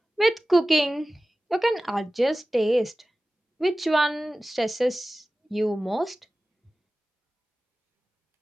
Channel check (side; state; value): both; normal; correlation 0.96